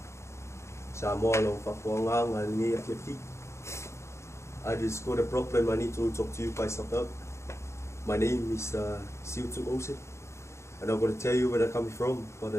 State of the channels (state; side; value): late; right; 0.13 ms